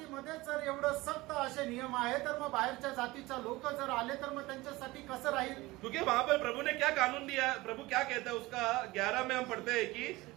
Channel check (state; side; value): quieter; left; 20.3 dB